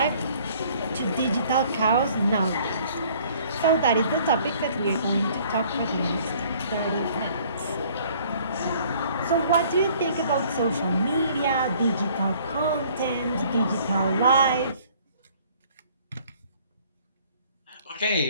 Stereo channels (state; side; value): inverted; both; correlation -0.57